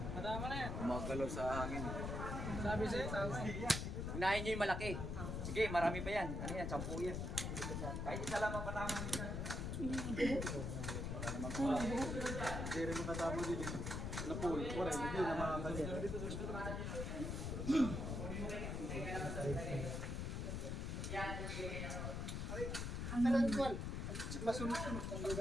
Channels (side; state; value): left; noise; rumble, 3 dB below the sound